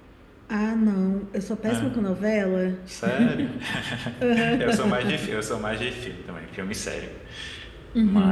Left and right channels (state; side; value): identical; both; correlation 1.00